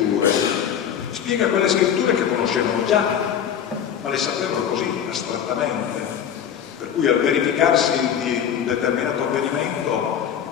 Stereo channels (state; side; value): quieter; right; 8.8 dB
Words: Spiega quelle scritture che conoscevano già, ma le sapevano così, astrattamente. Per cui al verificarsi di un determinato avvenimento